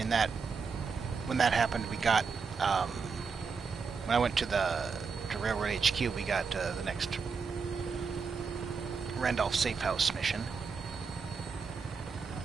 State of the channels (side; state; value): left; quieter; 5.3 dB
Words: when that happened, we got, when I went to Railroad HQ, we got the next Randolph Safe House mission.